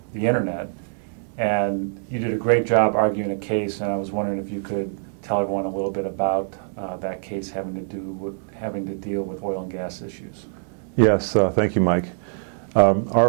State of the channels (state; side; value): silent; left; digital silence